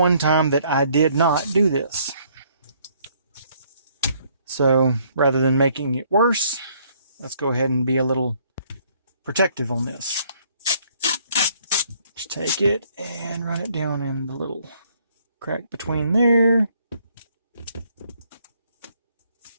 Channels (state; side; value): inverted; both; correlation -0.65